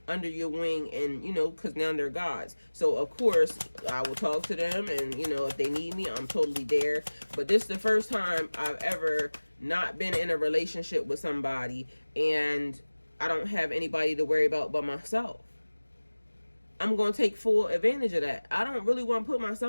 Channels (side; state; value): both; inverted; correlation -1.00